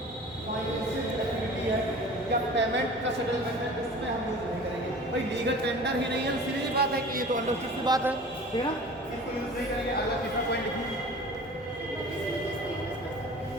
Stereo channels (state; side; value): normal; both; correlation 0.41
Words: फाइनेंशियल एक्टिविटी है या पेमेंट का सेटलमेंट है उसमें हम यूज नहीं करेंगे। भाई लीगल टेंडर ही नहीं है, सीधी सी बात है कि ये तो अंडरस्टूड सी बात है, ठीक है ना, इसको यूज नहीं करेंगे। अगला तीसरा पॉइंट लिखिए,